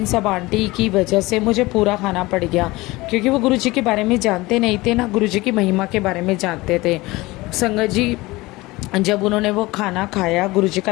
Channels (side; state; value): right; quieter; 21.0 dB